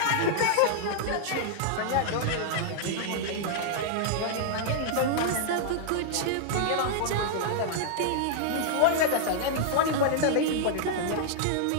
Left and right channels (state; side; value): different; both; correlation -0.01